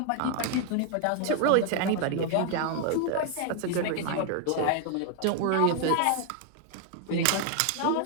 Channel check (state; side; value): different; both; correlation 0.00